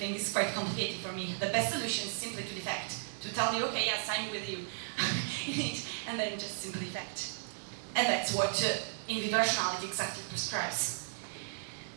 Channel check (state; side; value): silent; left; digital silence